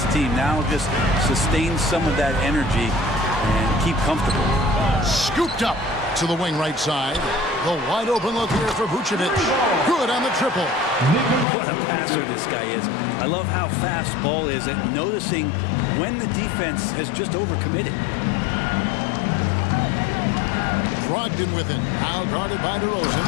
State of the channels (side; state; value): right; drops out; at 11.5 s